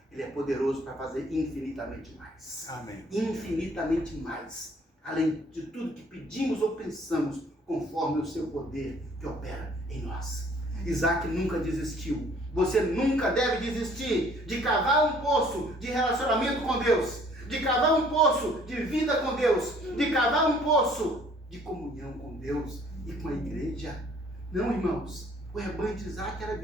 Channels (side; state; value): both; normal; correlation 0.58